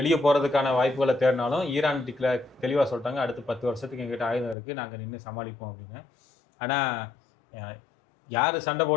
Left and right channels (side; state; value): right; drops out; at 4.5 s